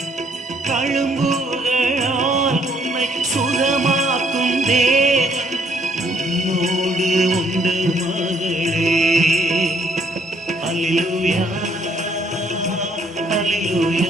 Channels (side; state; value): both; normal; correlation 0.67